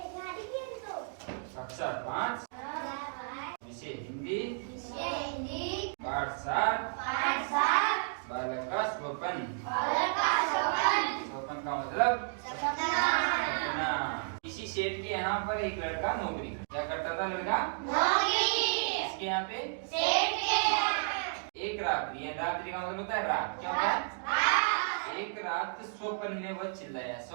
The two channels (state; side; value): silent; left; digital silence